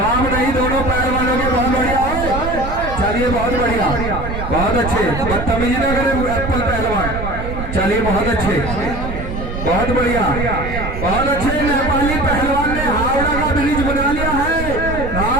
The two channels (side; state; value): right; noise; rumble, 6 dB below the sound